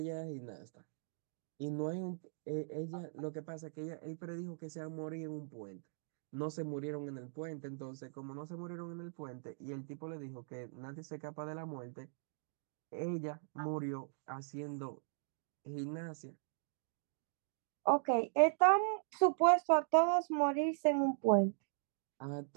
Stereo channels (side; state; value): left; silent; digital silence